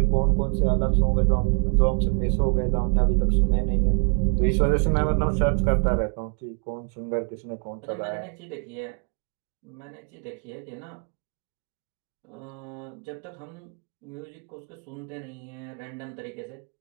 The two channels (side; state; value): left; quieter; 39.9 dB